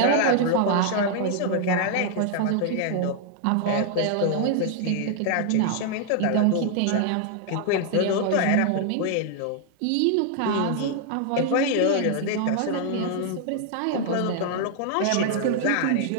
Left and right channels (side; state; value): both; different; correlation 0.00